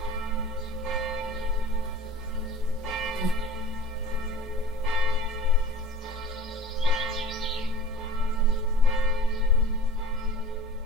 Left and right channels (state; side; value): normal; both; correlation 0.42